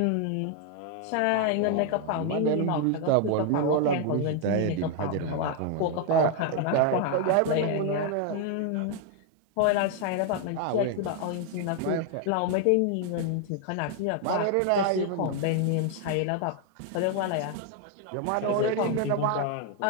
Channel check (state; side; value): different; both; correlation 0.00